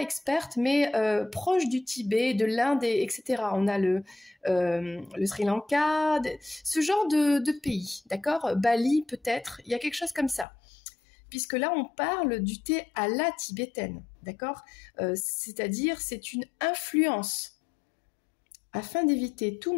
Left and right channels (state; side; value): drops out; right; at 10.5 s